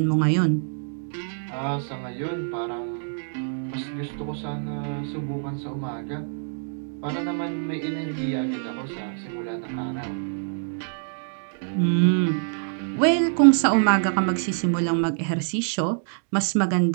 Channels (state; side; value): silent; left; digital silence